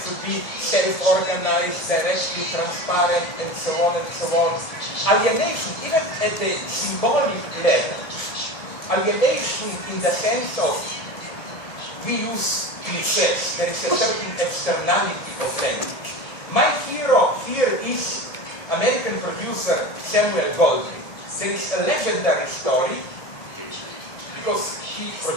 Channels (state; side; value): late; right; 1.7 ms